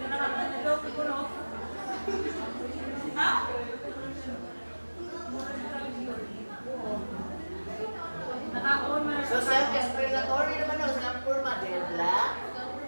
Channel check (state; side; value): inverted; both; correlation -1.00